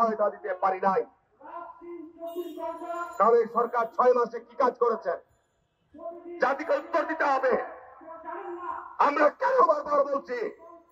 দিতে পারি নাই। তাহলে সরকার 6 মাসে কি কাজ করেছেন? জাতিকে উত্তর দিতে হবে। আমরা কেন বারবার বলছি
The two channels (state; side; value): identical; both; correlation 1.00